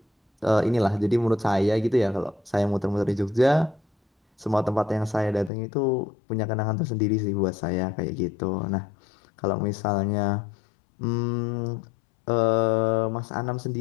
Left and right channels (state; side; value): drops out; right; at 5.5 s